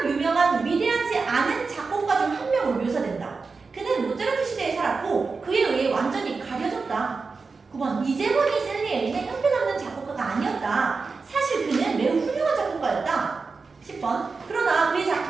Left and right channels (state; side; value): quieter; left; 4.5 dB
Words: 유명한 위대하지 않은 작곡가 중 한 명으로 묘사된다. 그는 모차르트 시대에 살았고 그에 의해 완전히 가려졌다. 9번, 이재원이 살리엘리는 형편없는 작곡가가 아니었다. 사실 그는 매우 훌륭한 작곡가였다. 10번, 그러나 그의